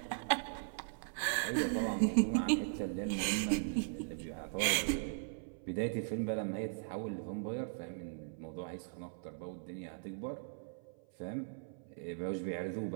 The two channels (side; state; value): left; silent; 52 dB below the other